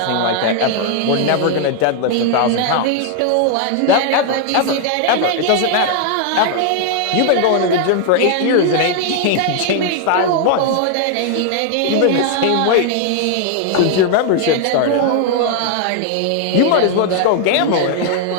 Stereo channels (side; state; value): both; different; correlation 0.00